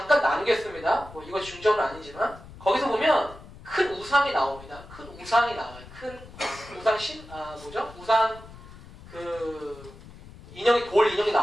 나누겠습니다. 뭐 이거 중점은 아니지만 거기서 보면 큰 우상이 나옵니다. 큰 우상이 나와요. 큰 우상 우상 돌 인형이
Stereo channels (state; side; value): noise; left; rumble, 18 dB below the sound